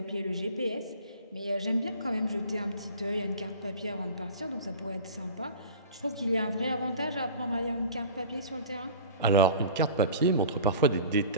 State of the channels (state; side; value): inverted; both; correlation -0.40